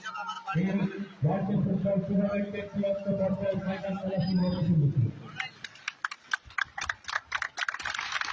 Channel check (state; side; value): identical; both; correlation 1.00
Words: এই রাজ্য ফুটবল টুর্নামেন্টের চূড়ান্ত পর্যায়ে ফাইনাল খেলা শুরু হতে চলেছে।